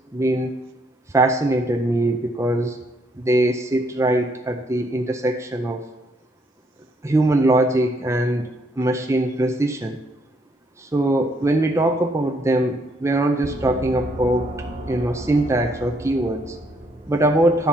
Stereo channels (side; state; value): both; normal; correlation 0.70